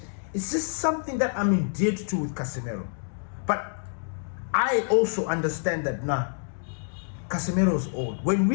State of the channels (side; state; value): right; silent; digital silence